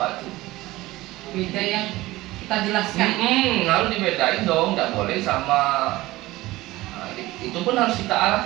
tuh. Beda yang kita jelaskan. Harus dibedain dong, nggak boleh sama. Nah, itu pun harus kita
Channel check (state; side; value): quieter; left; 18.4 dB